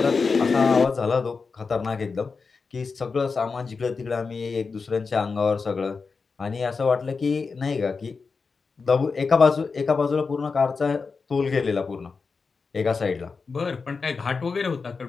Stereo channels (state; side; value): quieter; right; 4.8 dB